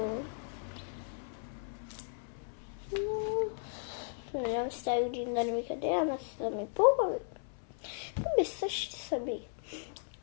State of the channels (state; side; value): silent; right; 54 dB below the other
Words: Надявам се тази година да не ми къде, ама са ми по-хубави. Би същи са би.